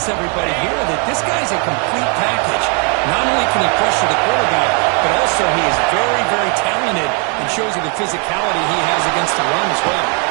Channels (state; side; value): quieter; left; 36.8 dB